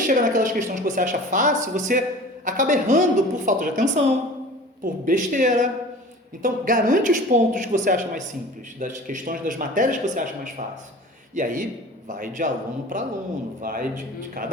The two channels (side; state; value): both; normal; correlation 0.41